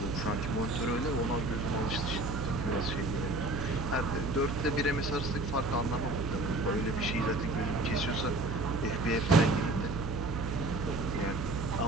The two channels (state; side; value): noise; right; hum, 5 dB below the sound